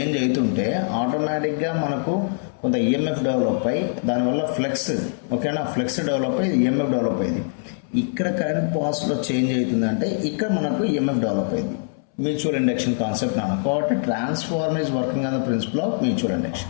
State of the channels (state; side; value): silent; right; 63 dB below the other